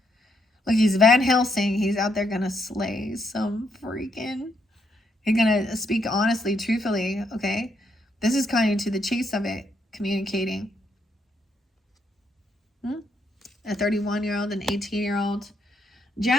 Look, he's Van Helsing. He's out there gonna slay some freaking. He's gonna speak honestly, truthfully. Okay, this is kind of to the chase of it, communicating. a 31-year-old, an 18-year-old.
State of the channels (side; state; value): both; normal; correlation 0.76